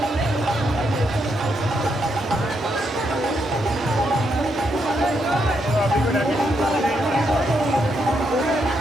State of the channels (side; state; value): both; normal; correlation 0.79